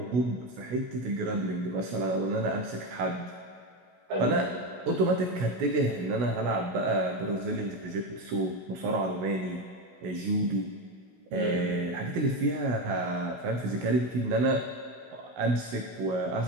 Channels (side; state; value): left; late; 16 ms